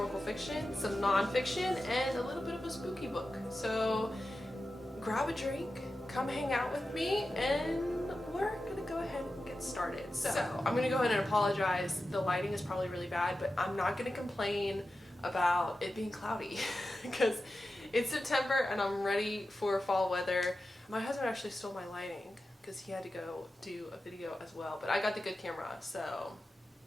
fiction, some non-fiction, and a little bit of a spooky book. So grab a drink, come hang out with me, and we're going to go ahead and get started. So I'm going to go ahead and apologize. The lighting is probably really bad, but I'm not going to complain about it being cloudy because it's September and I'm ready for fall weather. My husband actually stole my lighting because he had to go do a video as well, but I got the good camera, so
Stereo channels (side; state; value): both; normal; correlation 0.92